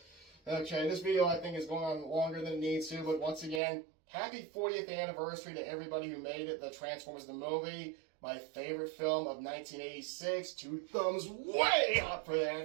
Okay, this video I think is going on longer than it needs to, but once again, happy 40th anniversary to everybody who made it, the Transformers the movie. My favorite film of 1986. 2 thumbs way up for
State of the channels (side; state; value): left; drops out; at 3.6 s